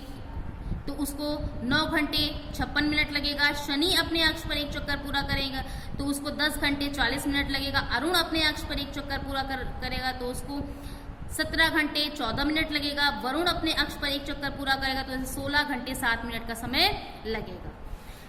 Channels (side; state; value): both; identical; correlation 1.00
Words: तो उसको 9 घंटे 56 मिनट लगेगा। शनि अपने अक्ष पर एक चक्कर पूरा करेगा तो उसको 10 घंटे 40 मिनट लगेगा। अरुण अपने अक्ष पर एक चक्कर पूरा करेगा तो उसको 17 घंटे 14 मिनट लगेगा। वरुण अपने अक्ष पर एक चक्कर पूरा करेगा तो 16 घंटे 7 मिनट का समय लगेगा।